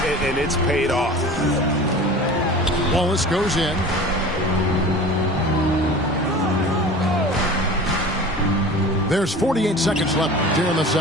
and it's paid off. Wallace goes in. There's 48 seconds left here in the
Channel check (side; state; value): both; normal; correlation 0.38